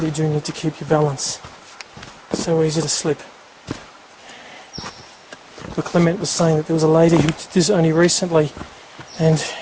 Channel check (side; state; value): both; identical; correlation 1.00